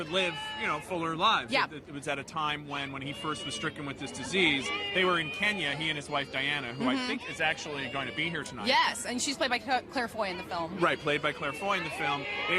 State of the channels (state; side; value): identical; both; correlation 1.00